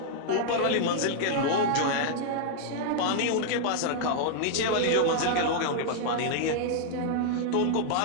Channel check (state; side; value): different; both; correlation -0.01